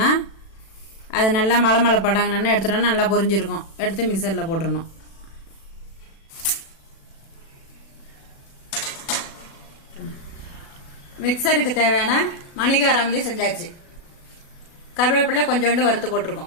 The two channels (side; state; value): right; late; 36 ms